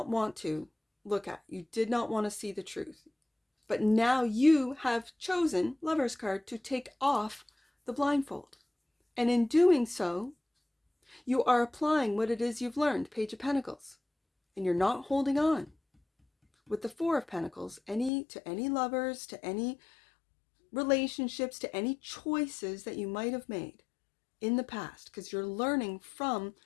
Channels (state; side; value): drops out; right; at 18.1 s